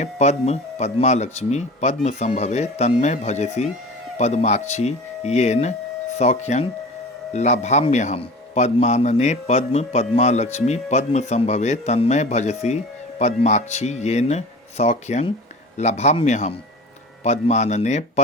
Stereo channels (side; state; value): both; normal; correlation 0.37